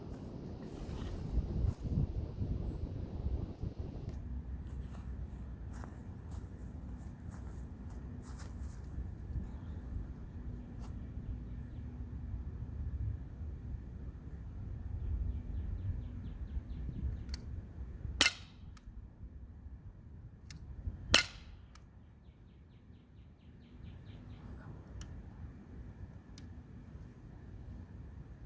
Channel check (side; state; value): both; identical; correlation 1.00